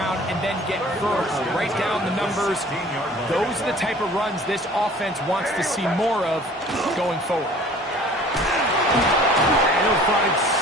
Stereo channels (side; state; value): both; normal; correlation 0.49